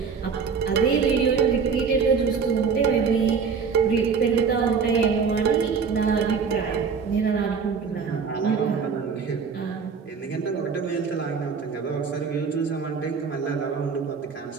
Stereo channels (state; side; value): quieter; left; 5.8 dB